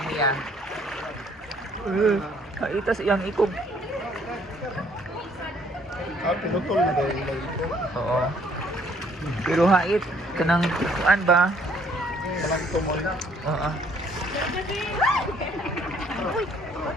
niya. Kaitas iyang ikog. Ah, pinutol na daw yung ito. Oo. Pero hait, kanang kuan ba? Walang tumoy. Oo.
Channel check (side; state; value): both; normal; correlation 0.63